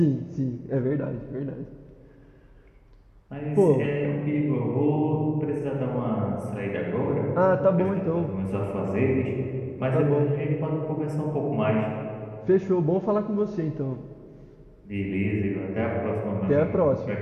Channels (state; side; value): identical; both; correlation 1.00